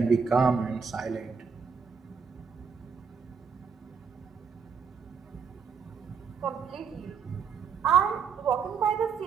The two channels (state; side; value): quieter; left; 6.1 dB